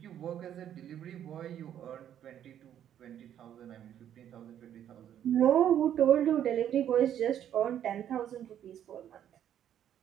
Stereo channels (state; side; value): quieter; left; 10.3 dB